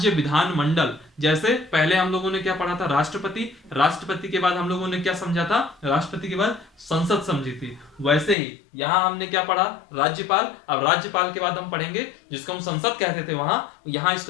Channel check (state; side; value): drops out; right; at 8.3 s